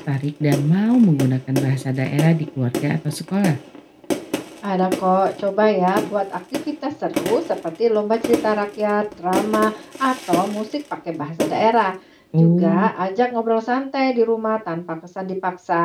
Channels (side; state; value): both; identical; correlation 1.00